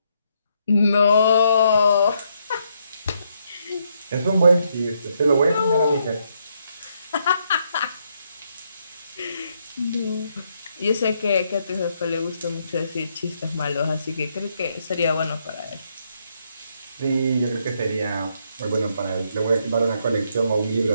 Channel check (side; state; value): both; inverted; correlation -0.76